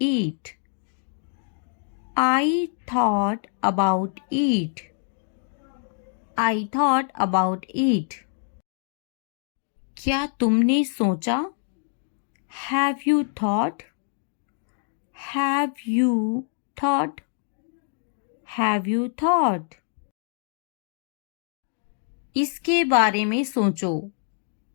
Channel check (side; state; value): right; silent; digital silence